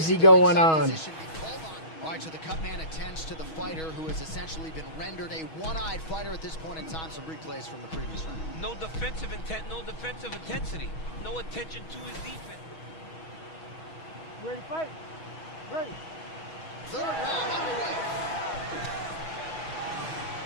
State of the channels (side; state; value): right; late; 6.3 ms